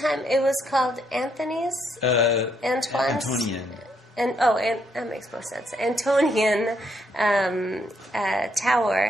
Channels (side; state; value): both; normal; correlation 0.74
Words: it was called Anthony's? Antoine's? Antonian. And that makes more sense. Antonian